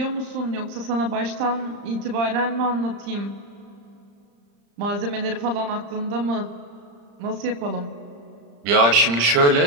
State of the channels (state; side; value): late; left; 35 ms